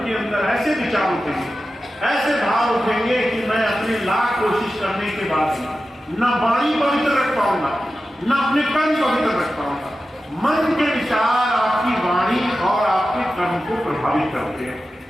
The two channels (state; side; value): normal; both; correlation 0.93